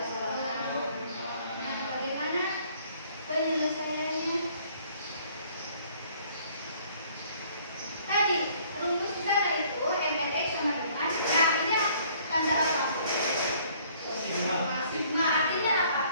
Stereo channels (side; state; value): both; inverted; correlation -0.59